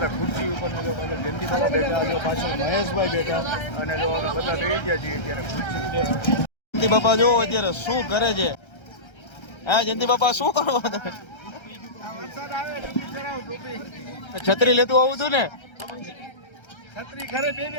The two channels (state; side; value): late; right; 1.3 ms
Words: હતા ખુરશી ઉપર ને જો પાછળ જયંતિ બાપા બેઠા, જો પાછળ મહેશભાઈ બેઠા અને જો અમે બધા બેસી ગયા છીએ અત્યારે ખુરશી ઉપર. જયંતિ બાપા જો અત્યારે શું કરે છે? હા જયંતિ બાપા શું કરો તમે? વરસાદ આવે ટોપી કરાવ ટોપી. છત્રી લેતું આવું હતું ને? છત્રી ઘરે બે